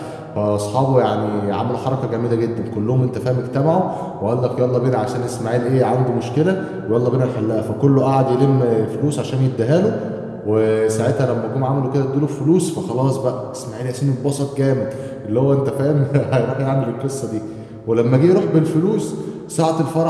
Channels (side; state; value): both; identical; correlation 1.00